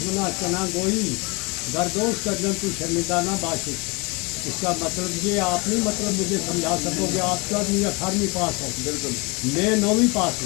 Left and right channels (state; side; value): quieter; right; 28.2 dB